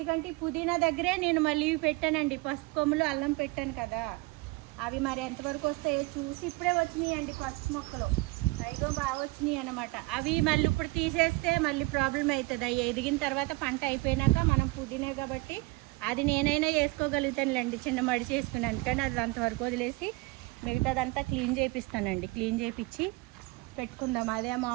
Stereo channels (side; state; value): left; quieter; 23.6 dB